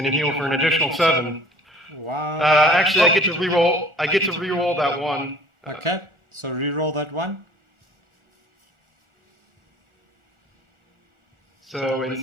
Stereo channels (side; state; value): both; normal; correlation 0.50